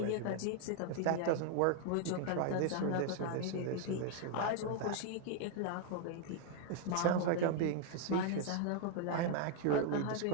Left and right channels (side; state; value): both; different; correlation 0.00